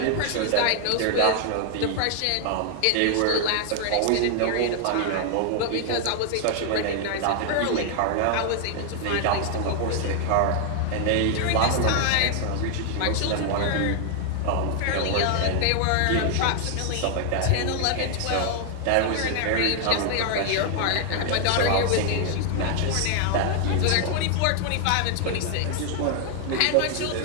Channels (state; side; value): different; both; correlation 0.00